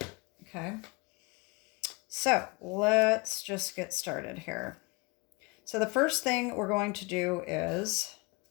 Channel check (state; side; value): quieter; right; 27.2 dB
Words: Okay. So let's just get started here. So the first thing we're going to do is